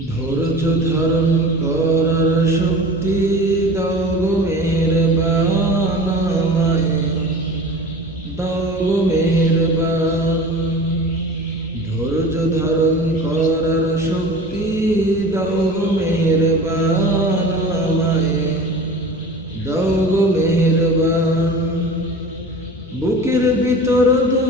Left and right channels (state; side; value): normal; both; correlation 0.38